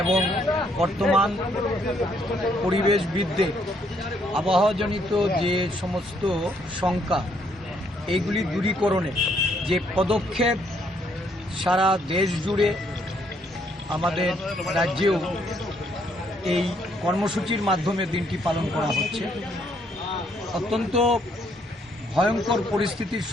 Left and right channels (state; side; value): normal; both; correlation 0.70